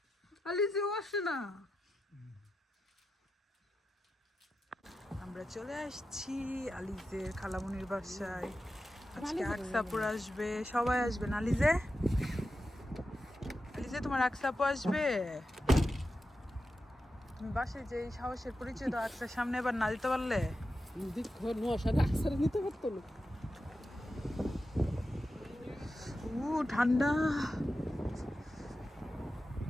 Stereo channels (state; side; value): normal; both; correlation 0.90